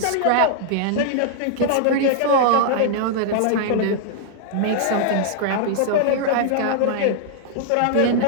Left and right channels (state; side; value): different; both; correlation -0.01